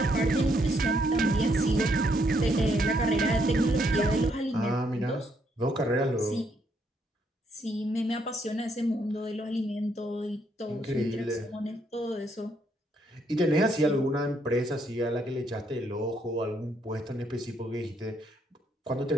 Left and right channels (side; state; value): both; normal; correlation 0.73